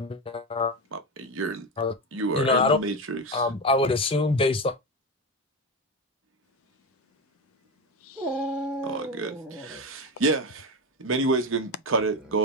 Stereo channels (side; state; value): both; normal; correlation 0.17